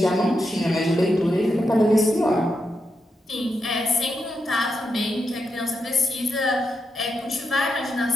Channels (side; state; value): both; normal; correlation 0.85